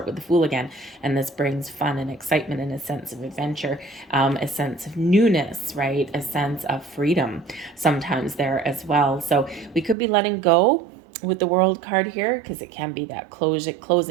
with the Fool again. And this brings fun and excitement and a sense of adventure, a sense of newness, right, a sense of freedom sometimes there as well. So we could be letting go with the World card here, because it can be that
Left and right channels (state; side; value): drops out; left; at 10.0 s